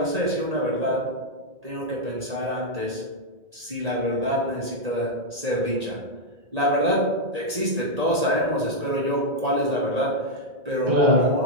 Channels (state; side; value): late; left; 1.8 ms